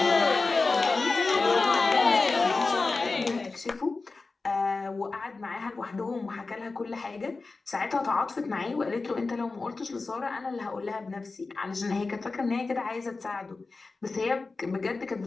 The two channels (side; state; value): right; quieter; 3.8 dB